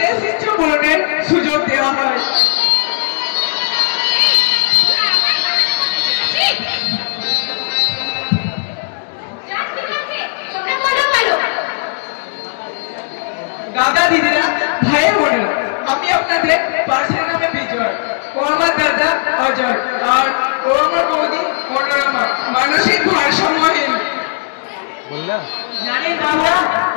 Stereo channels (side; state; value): right; silent; digital silence